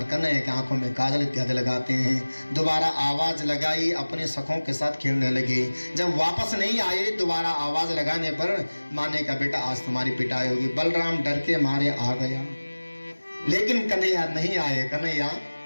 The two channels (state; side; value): inverted; both; correlation -1.00